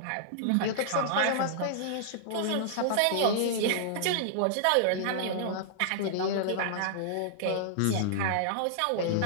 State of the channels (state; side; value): different; both; correlation -0.01